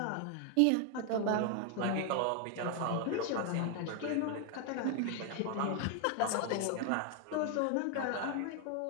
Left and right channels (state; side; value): different; both; correlation 0.00